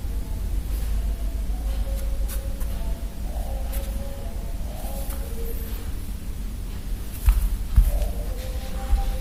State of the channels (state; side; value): identical; both; correlation 1.00